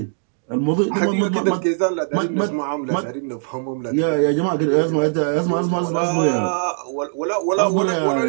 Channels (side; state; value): left; silent; digital silence